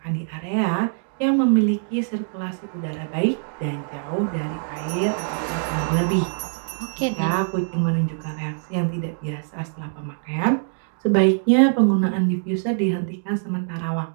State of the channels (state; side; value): silent; left; 63 dB below the other